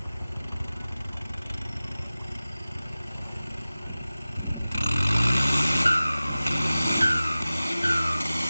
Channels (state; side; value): inverted; both; correlation -0.97